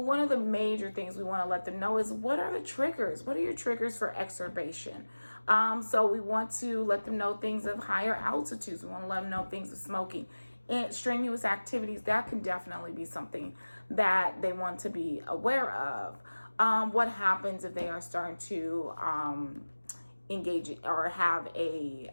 one of the major things we want to let them know is, what are the triggers? What are your triggers for exacerbation? So we want to let them know things of higher altitudes. We want to let them know things of smoking and strenuous activities. That can definitely be something that they want to be aware of. What happens if they are starting to engage or have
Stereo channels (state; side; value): inverted; both; correlation -1.00